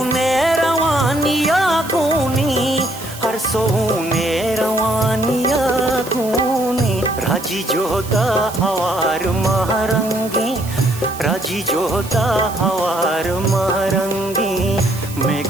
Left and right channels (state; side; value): noise; right; hiss, 15 dB below the sound